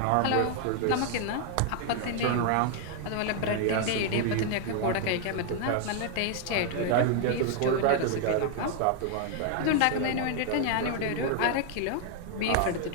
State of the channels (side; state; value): both; different; correlation 0.00